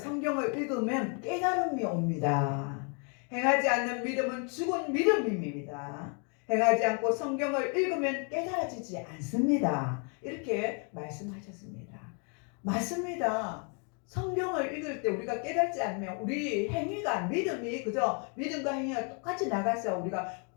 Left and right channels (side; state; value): right; quieter; 38.3 dB